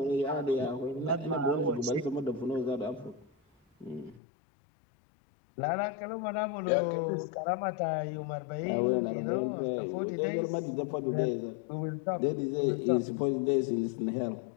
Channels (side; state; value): right; drops out; at 4.2 s